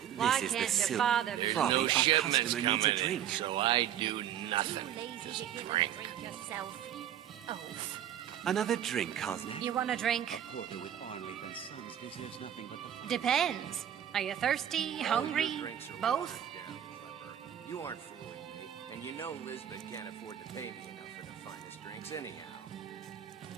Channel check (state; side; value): quieter; left; 10.2 dB